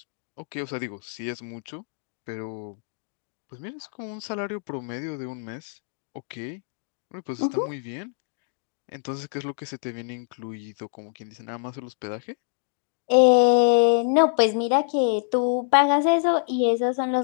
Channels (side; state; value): right; silent; 55 dB below the other